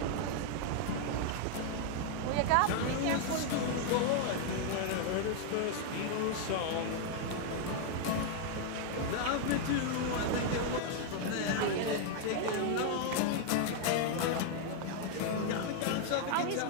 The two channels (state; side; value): different; both; correlation 0.00